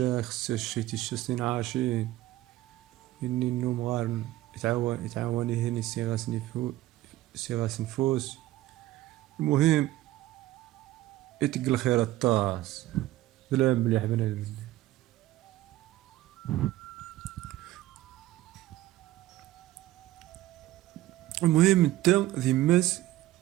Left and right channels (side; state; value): left; quieter; 15.7 dB